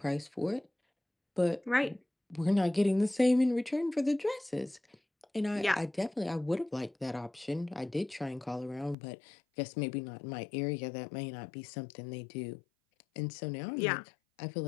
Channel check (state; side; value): drops out; right; at 9.0 s